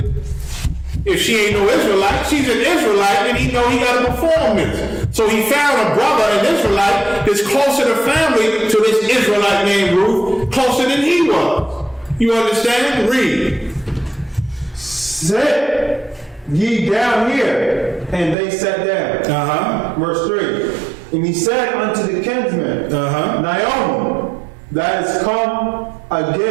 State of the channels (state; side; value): drops out; left; at 18.4 s